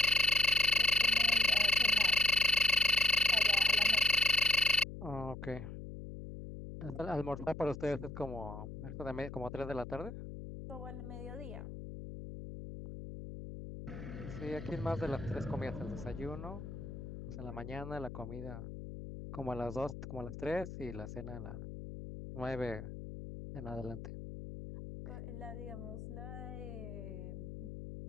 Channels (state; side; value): noise; left; hum, 10 dB below the sound